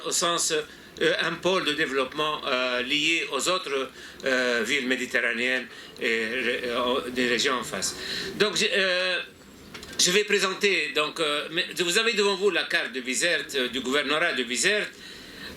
au sens un pôle de développement lié aux autres villes méditerranéennes et des régions en face. Donc je vais présenter, donc, vous avez devant vous la carte de Bizerte, du gouvernorat de Bizerte,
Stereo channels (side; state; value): both; identical; correlation 1.00